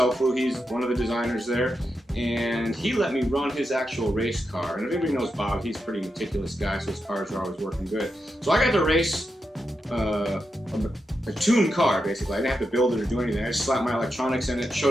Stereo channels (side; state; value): both; normal; correlation 0.87